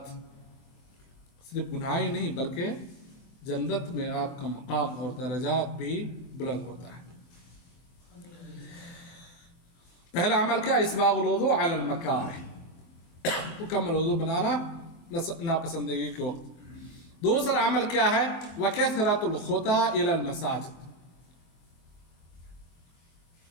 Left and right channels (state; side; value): late; right; 23 ms